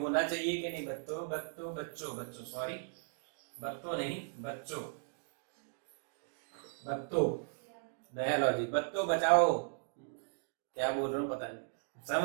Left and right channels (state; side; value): silent; left; digital silence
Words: चाहिए कि नहीं? बच्चों सॉरी, बत्तों नहीं, बच्चों नया लॉजिक, बच्चों बचाओ, क्या बोल रहा हूँ पता नहीं,